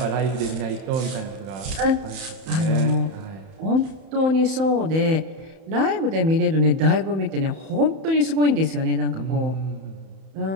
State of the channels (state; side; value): late; left; 31 ms